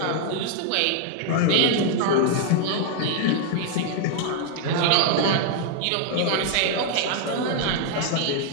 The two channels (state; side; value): different; both; correlation 0.00